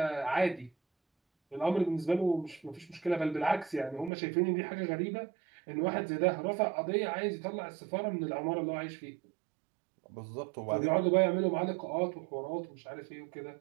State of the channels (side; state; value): left; drops out; at 4.1 s